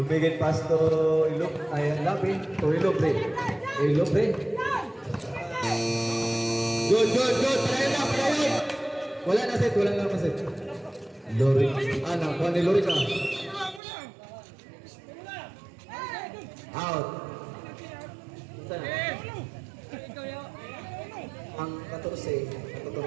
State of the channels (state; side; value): drops out; left; at 13.8 s